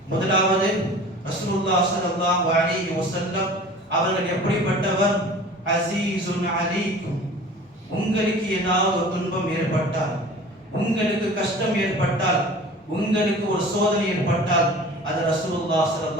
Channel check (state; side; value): normal; both; correlation 0.42